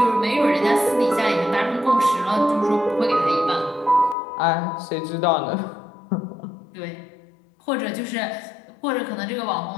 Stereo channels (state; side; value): drops out; right; at 4.2 s